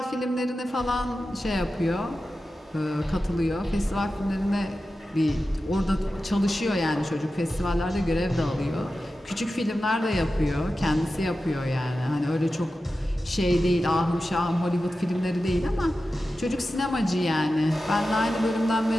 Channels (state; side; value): normal; both; correlation 0.93